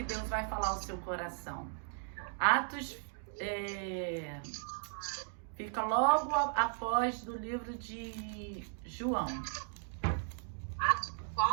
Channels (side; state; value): left; silent; digital silence